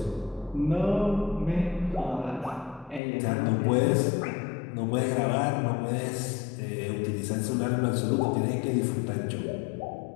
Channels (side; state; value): right; drops out; at 3.0 s